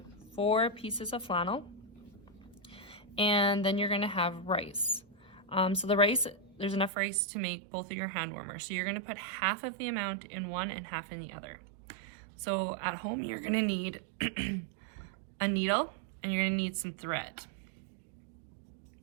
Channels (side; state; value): left; drops out; at 6.9 s